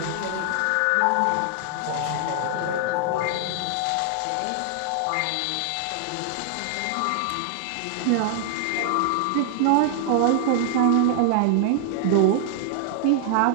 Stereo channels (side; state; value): both; different; correlation 0.00